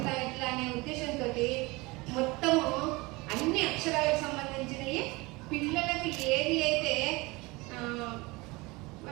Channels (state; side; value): quieter; left; 23.7 dB